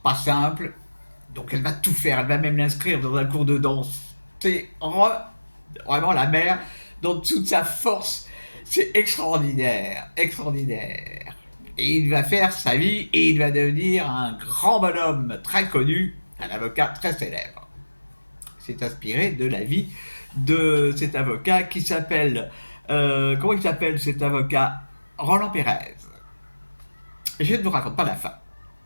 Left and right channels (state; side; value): inverted; both; correlation -1.00